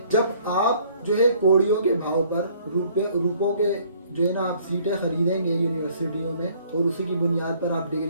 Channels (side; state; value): both; inverted; correlation -0.60